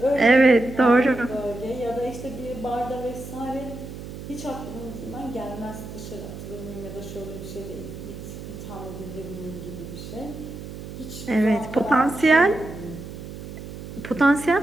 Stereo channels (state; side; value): noise; right; hum, 11 dB below the sound